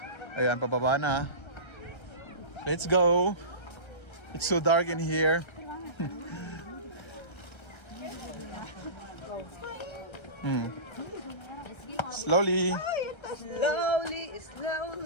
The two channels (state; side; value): late; right; 1.3 ms